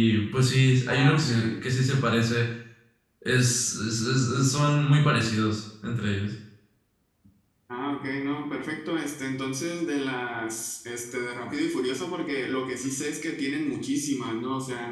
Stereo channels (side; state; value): both; identical; correlation 1.00